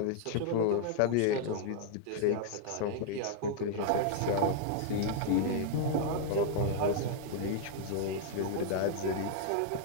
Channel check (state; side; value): different; both; correlation 0.00